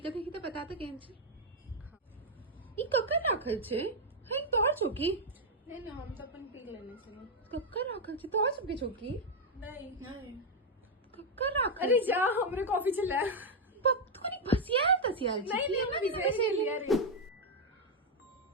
देखी तो बता तो केन छे ई कक्कर राखल छे हे तोहर चौकी नहीं नहीं हम तो अपन पी लेने से कक्कर राखल छे तोहर सबके चौकी नहीं नहीं कक्कर राखल अरे जा हमरे कॉफी चला पप तू नहीं भसियाल तसियाल नहीं नहीं मैं विजय लिया रे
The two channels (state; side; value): normal; both; correlation 0.01